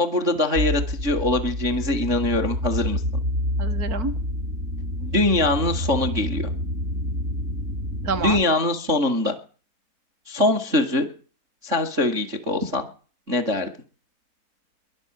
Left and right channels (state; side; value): late; left; 3.6 ms